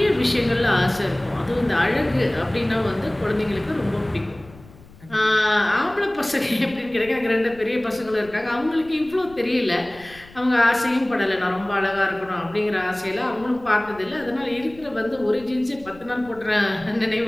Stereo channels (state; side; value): noise; left; rumble, 22 dB below the sound